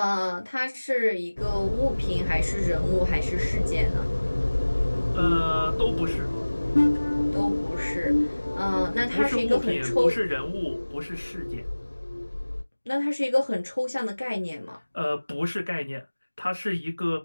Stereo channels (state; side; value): inverted; both; correlation -1.00